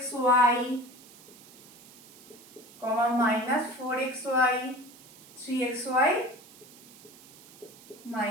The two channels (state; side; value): noise; right; hiss, 22 dB below the sound